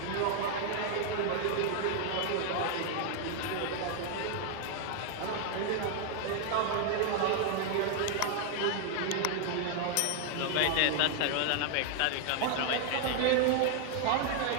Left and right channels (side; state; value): both; different; correlation 0.00